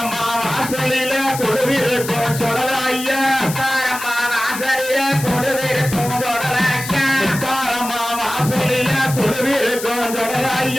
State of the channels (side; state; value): left; noise; hiss, 9 dB below the sound